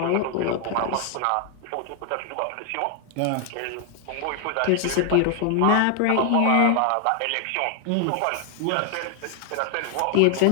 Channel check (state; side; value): different; both; correlation 0.00